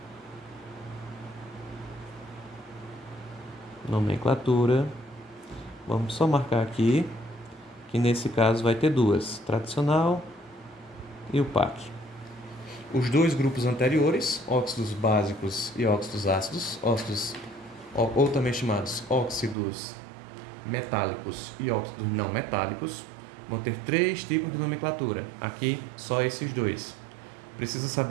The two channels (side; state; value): left; drops out; at 19.6 s